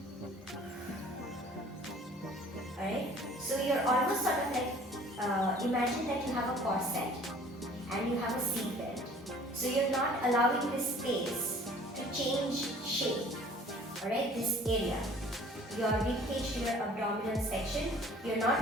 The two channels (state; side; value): normal; both; correlation 0.51